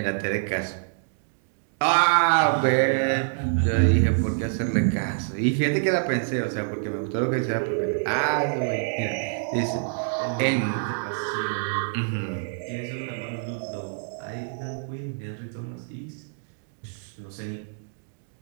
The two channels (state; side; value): silent; left; digital silence